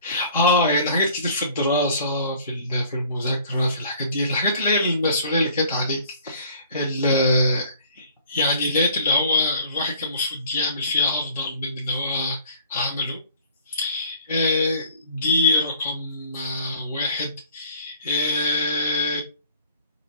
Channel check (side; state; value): both; inverted; correlation -0.52